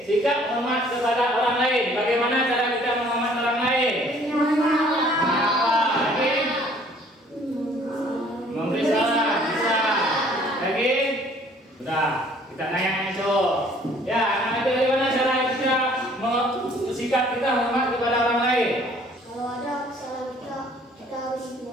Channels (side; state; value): both; normal; correlation 0.57